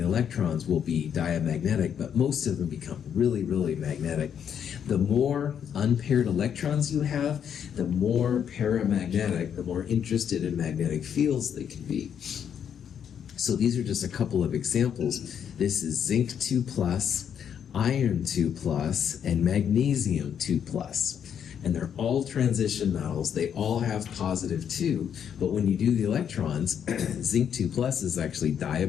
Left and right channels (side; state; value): right; quieter; 8.4 dB